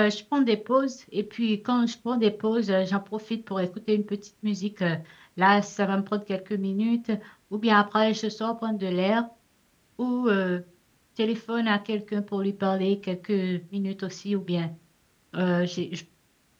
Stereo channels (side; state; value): both; identical; correlation 1.00